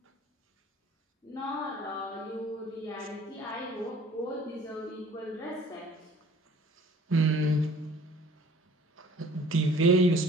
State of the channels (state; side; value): normal; both; correlation 0.51